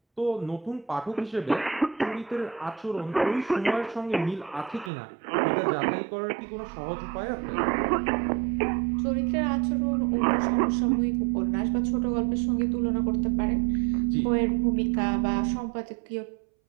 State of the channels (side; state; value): left; drops out; at 4.9 s